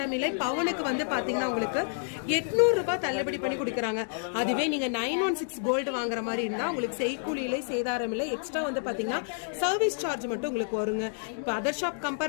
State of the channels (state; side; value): silent; right; digital silence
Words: இல்லை. பவுனுக்கு வந்து பாத்தீங்கன்னா உங்களுக்கு 800 ரூபாய் தள்ளுபடி பண்ணி கொடுக்குறாங்க. அதுவே நீங்க 916 கோல்டு வாங்குற மாதிரி இருந்தா உங்களுக்கு செய்கூலி இல்லை, சேதாரம் இல்லை. எக்ஸ்ட்ரா வந்து பாத்தீங்கன்னா சர்வீஸ் சார்ஜ் மட்டும் உங்களுக்கு வருங்க. இப்போ அதர் ஷாப்